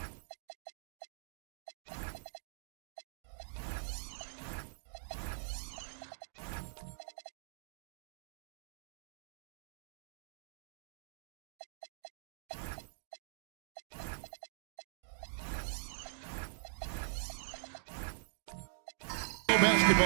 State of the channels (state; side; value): silent; left; digital silence